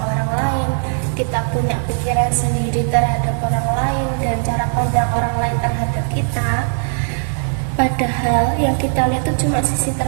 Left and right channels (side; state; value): left; silent; digital silence